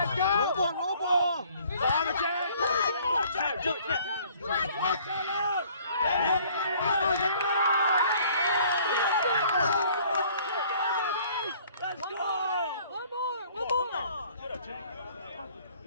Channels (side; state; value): both; inverted; correlation -0.57